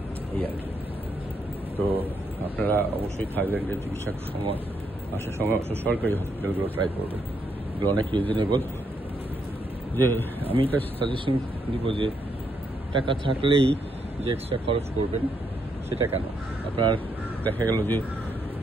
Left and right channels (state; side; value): normal; both; correlation 0.77